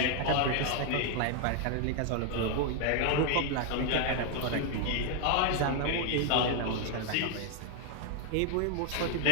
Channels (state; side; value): different; both; correlation 0.00